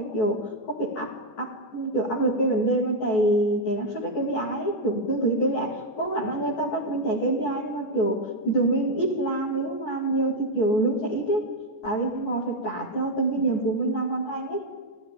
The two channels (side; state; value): right; late; 14 ms